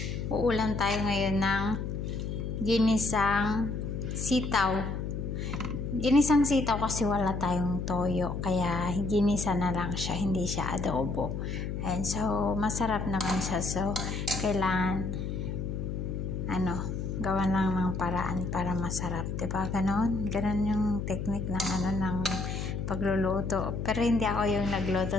uulam tayo ngayon ng ginisang sitaw. Ginisang sitaw kasi wala tayong toyo, kaya ginisa na lang siya, hindi siya adobo. And so masarap naman siya. So kailangan gawan lang ng paraan para masarap, 'di ba? Ganon yung technique ng pagluluto. Pero hindi ako yung nagluto,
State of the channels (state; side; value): noise; left; hum, 4 dB below the sound